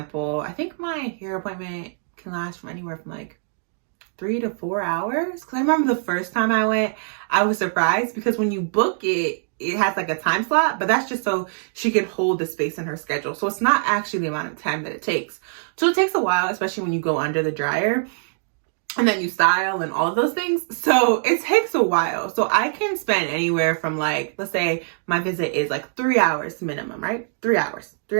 I think my hair appointment can last from anywhere from like 3 to 4 hours. Cause I remember the first time I went, I was surprised because when you book it, it has like a time slot, but that's just so she can hold the space in her schedule. So it's not actually the amount of time that it takes. So it takes a while, especially when you go under the dryer. And then you style and all of those things. So it takes a while. So I can spend anywhere from like, let's say my visit is like 3 hours minimum, right? 3 hours.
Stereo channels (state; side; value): silent; left; digital silence